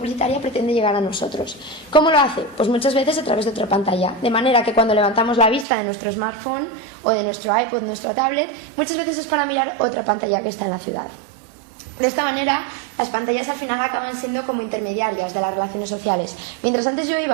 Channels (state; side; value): drops out; left; at 5.7 s